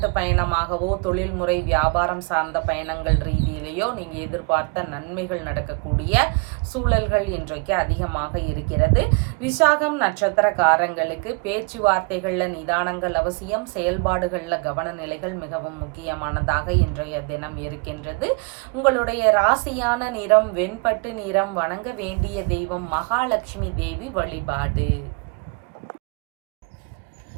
பயணமாகவோ தொழில்முறை வியாபாரம் சார்ந்த பயணங்கள் ரீதியிலேயோ நீங்க எதிர்பார்த்த நன்மைகள் நடக்கக்கூடிய சூழல்கள் இன்றைக்கு அதிகமாக இருக்கிறது. விசாகம் நட்சத்திரக்காரங்களுக்கு பேச்சுவார்த்தைகள்ல நிதானங்கள் அவசியம். செயல்பாடுகள்ல கவனநிலைகள் மிகவும் முக்கியமானதாக இன்றைய தினம் இருக்கின்றது. உங்களுடைய ராசியான நிறம் வெண்பட்டு நிறம். வணங்க வேண்டிய தெய்வம் மகாலட்சுமி தேவி வழிபாடு.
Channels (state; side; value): quieter; left; 32.2 dB